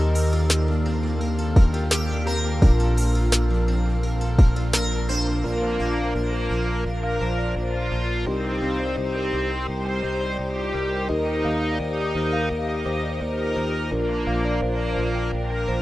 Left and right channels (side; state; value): both; normal; correlation 0.95